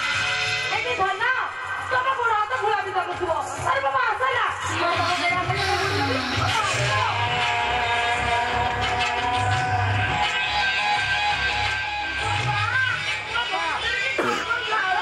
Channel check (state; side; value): identical; both; correlation 1.00